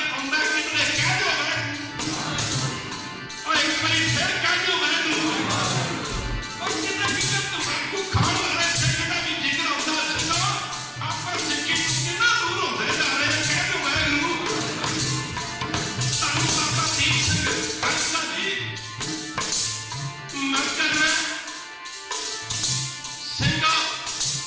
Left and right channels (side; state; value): both; identical; correlation 1.00